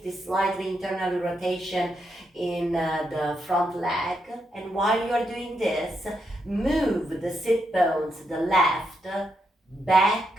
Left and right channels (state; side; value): normal; both; correlation 0.81